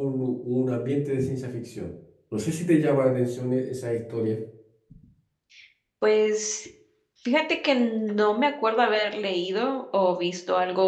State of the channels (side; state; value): both; identical; correlation 1.00